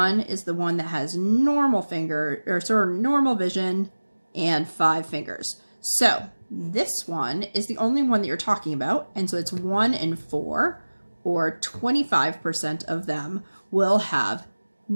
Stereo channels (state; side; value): inverted; both; correlation -1.00